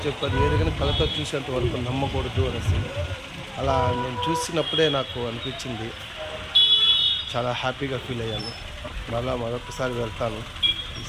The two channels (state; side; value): identical; both; correlation 1.00